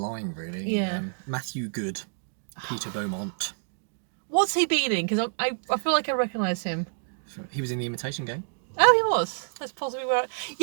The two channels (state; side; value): silent; left; digital silence